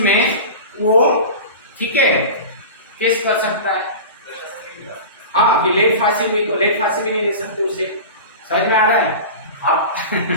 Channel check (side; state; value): both; inverted; correlation -0.32